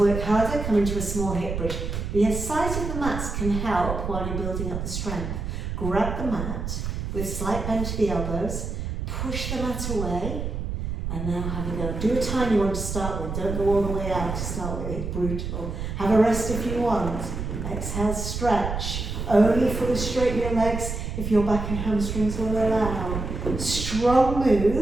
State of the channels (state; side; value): noise; right; rumble, 4 dB below the sound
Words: harder? Come into a small hip bridge. The size of the mats can help while you're building up the strength. Grab the mat with slight bend to the elbows, push the mat away, and now have a go. Do a tiny one to start with. Don't go all the way out to start with. It's brutal. Have a rest if you want. Exhale, stretch. Only fully straighten your legs if your back and hamstrings will allow. Strong